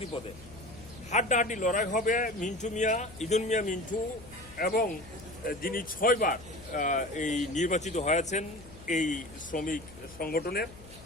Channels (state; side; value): noise; left; hum, 19 dB below the sound